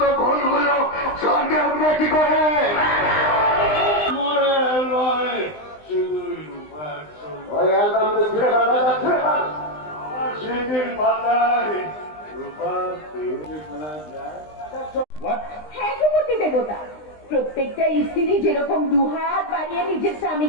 ভুলগুলো স্বর্গে উঠবে কি করে? ওই অ্যালবামটা ছিঁড়ে ফেল, এটা ছিঁড়ে ফেল। সেদিন মাথায় রূপার তেলে ফেলা যায়। হ্যাঁ গোপতি দেবতা, প্রত্যেকটা স্ত্রী যেরকম দুহাত বাড়িয়ে নিজের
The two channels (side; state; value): right; late; 20 ms